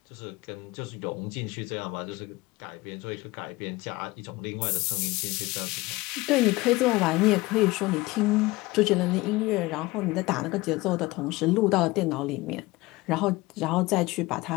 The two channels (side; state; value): right; quieter; 20.8 dB